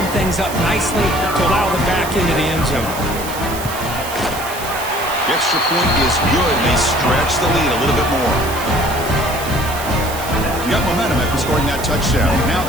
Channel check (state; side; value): noise; right; hiss, 11 dB below the sound